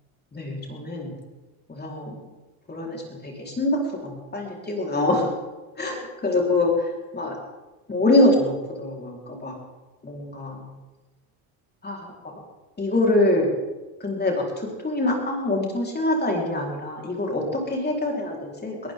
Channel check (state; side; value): normal; both; correlation 0.11